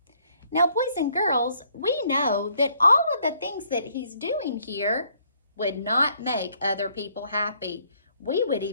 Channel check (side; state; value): both; inverted; correlation -0.67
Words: Now, boys and girls, we know that all of the things that he's doing here would not make other people happy. We would